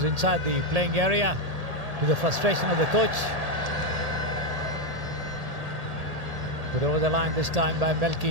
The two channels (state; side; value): late; left; 1.8 ms